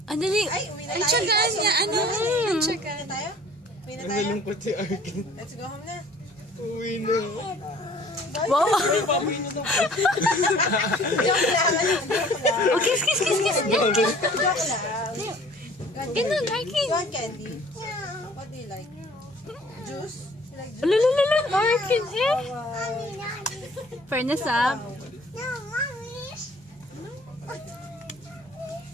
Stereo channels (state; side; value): normal; both; correlation 0.52